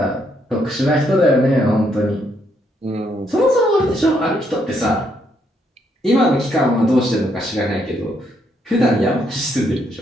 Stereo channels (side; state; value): both; normal; correlation 0.74